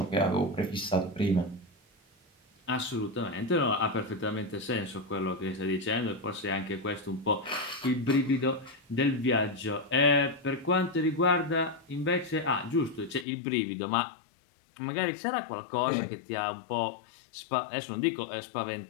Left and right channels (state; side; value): drops out; right; at 13.2 s